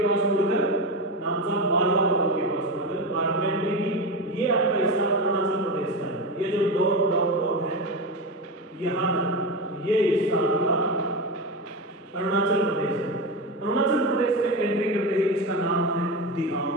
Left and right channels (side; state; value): both; normal; correlation 0.19